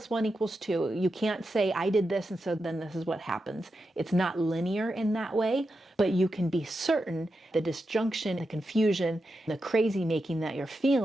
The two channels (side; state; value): both; normal; correlation 0.88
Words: 1 = 2. You can't say I did this and so then this is what happens. It's not linear in that way, but you can be certain the disjunction, the confusion, the crazy making that you're